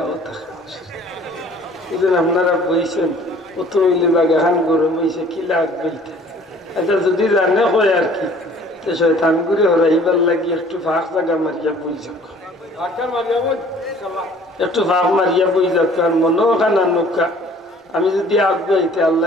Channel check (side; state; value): both; normal; correlation 0.53